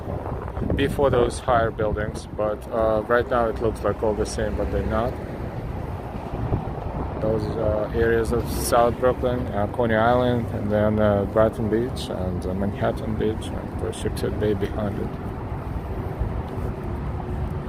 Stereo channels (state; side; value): identical; both; correlation 1.00